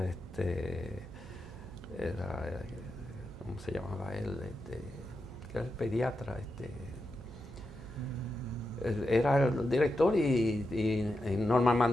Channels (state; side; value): noise; right; hum, 16 dB below the sound